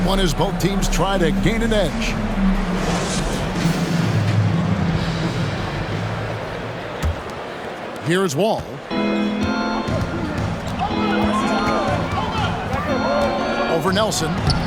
one as both teams try to gain an edge. Here's Wall. Over Nelson.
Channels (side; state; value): both; identical; correlation 1.00